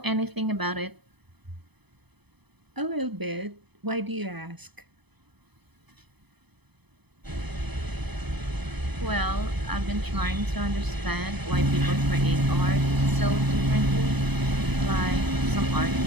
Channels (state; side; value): late; left; 0.99 ms